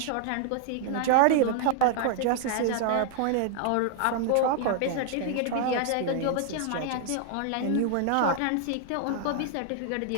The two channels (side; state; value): both; different; correlation 0.00